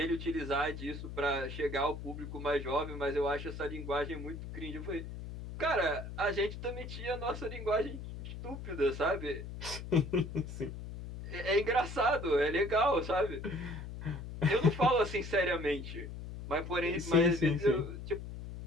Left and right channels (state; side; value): noise; left; hum, 9 dB below the sound